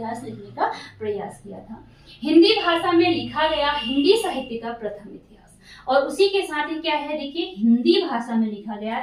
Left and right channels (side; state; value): both; identical; correlation 1.00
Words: लिखने का प्रयास किया था। हिंदी भाषा में लिखा गया हिंदी साहित्य का प्रथम इतिहास, और उसी के साथ ही क्या है, देखिए हिंदी भाषा में लिखा गया